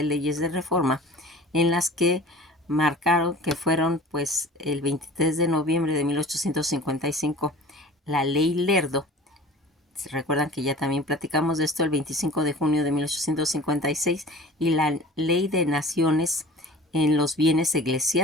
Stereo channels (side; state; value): both; normal; correlation 0.42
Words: leyes de reforma, en las que marcaron que fueron pues el 23 de noviembre de 1855 la ley Lerdo, recuerdan que ya también platicamos de esto, el 25 de junio de 1856, y la Ley de Naciones en los Bienes